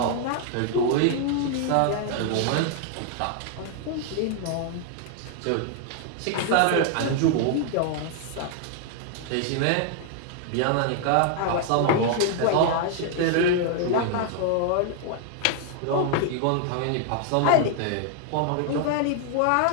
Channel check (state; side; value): different; both; correlation 0.00